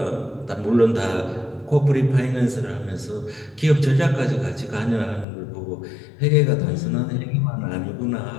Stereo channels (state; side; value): drops out; right; at 5.2 s